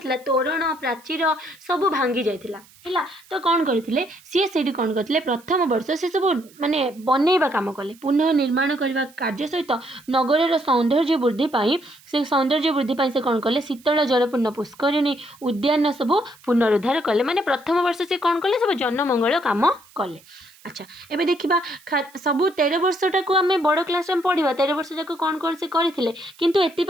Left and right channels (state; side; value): noise; right; hiss, 26 dB below the sound